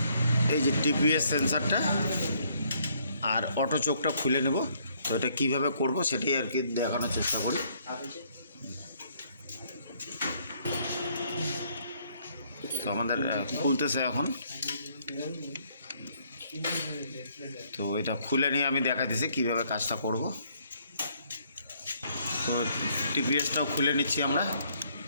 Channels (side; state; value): both; inverted; correlation -0.67